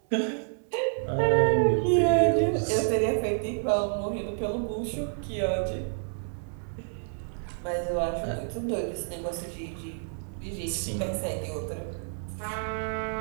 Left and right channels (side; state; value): left; silent; 59 dB below the other